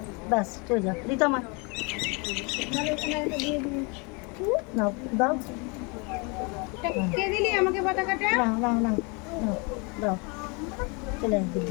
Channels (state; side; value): quieter; right; 30.9 dB